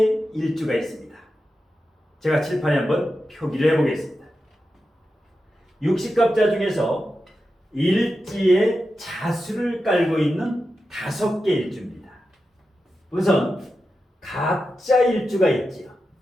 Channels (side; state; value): both; normal; correlation 0.90